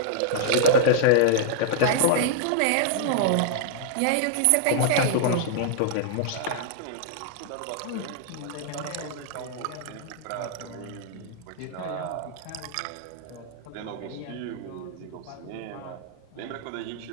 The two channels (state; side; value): different; both; correlation -0.01